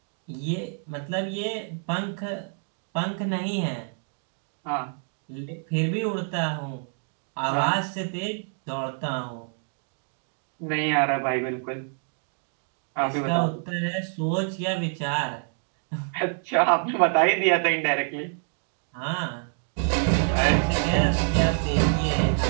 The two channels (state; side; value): silent; left; 57 dB below the other